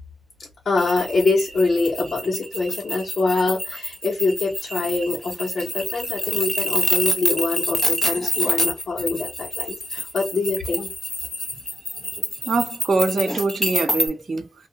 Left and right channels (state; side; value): normal; both; correlation 0.85